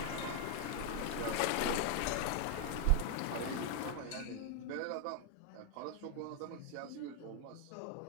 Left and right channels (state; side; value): different; both; correlation 0.01